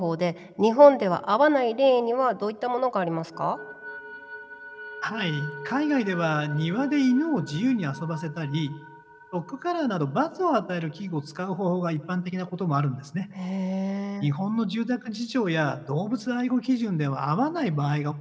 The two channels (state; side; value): identical; both; correlation 1.00